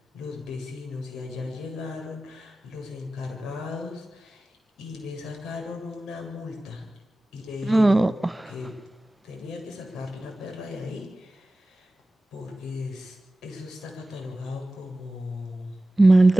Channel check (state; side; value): normal; both; correlation 0.96